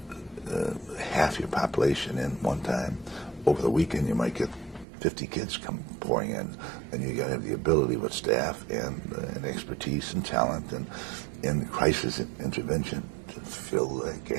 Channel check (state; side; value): drops out; left; at 4.9 s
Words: half your population in one time. Over the weekend, you might get 50 kids come pouring in, and you got to have the ability with staff and expertise and talent and crisis intervention to fill that